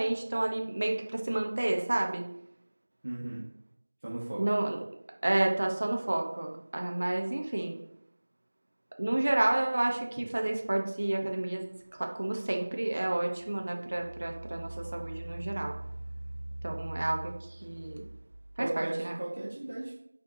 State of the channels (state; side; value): inverted; both; correlation -1.00